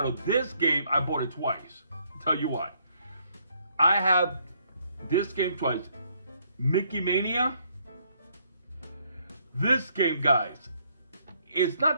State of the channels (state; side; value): inverted; both; correlation -0.69